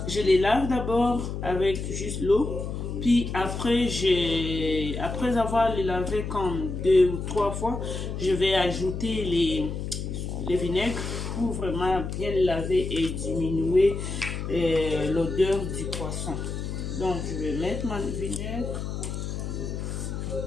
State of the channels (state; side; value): noise; left; hum, 5 dB below the sound